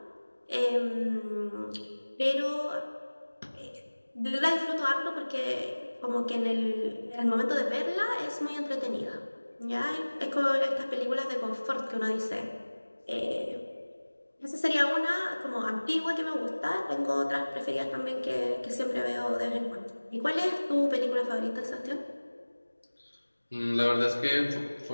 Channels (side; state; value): both; inverted; correlation -1.00